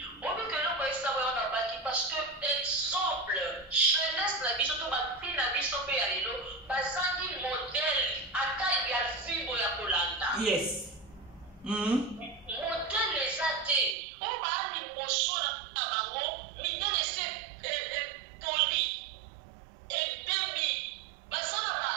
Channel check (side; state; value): left; drops out; at 14.0 s